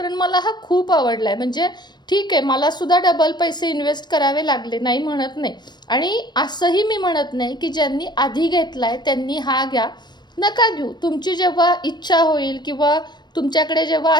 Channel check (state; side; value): late; right; 0.21 ms